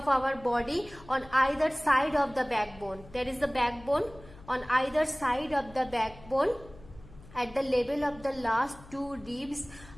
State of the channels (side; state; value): left; noise; hum, 21 dB below the sound